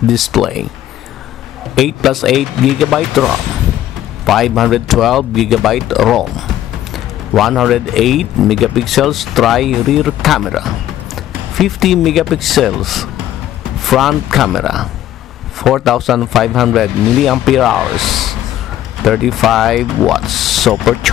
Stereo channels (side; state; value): right; quieter; 12.6 dB